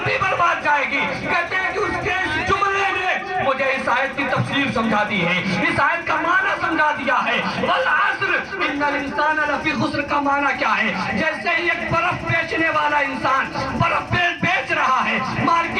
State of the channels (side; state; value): both; identical; correlation 1.00